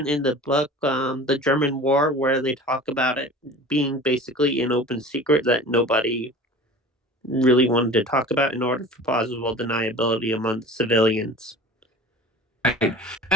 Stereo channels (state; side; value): normal; both; correlation 0.39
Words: in the book, The German War, where they talk about it being basically an open secret that nobody really wanted to talk about in order for plausible deniability among the civilians. Right.